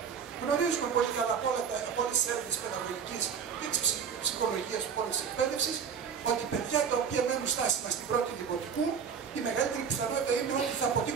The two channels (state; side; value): quieter; left; 6.9 dB